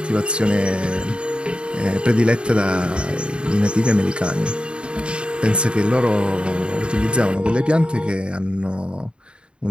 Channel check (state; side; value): late; left; 0.054 ms